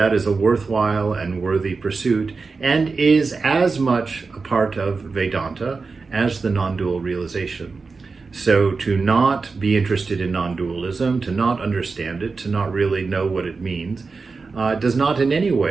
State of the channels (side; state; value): left; quieter; 4.4 dB